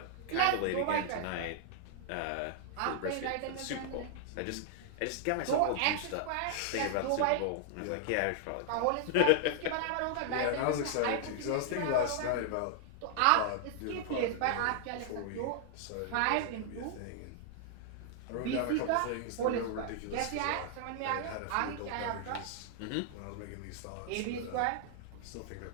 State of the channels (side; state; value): both; different; correlation -0.01